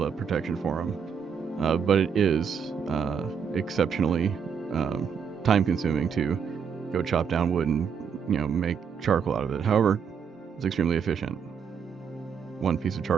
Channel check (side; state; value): left; quieter; 6.9 dB